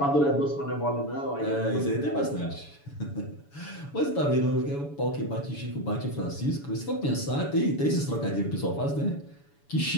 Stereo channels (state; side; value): late; right; 7.0 ms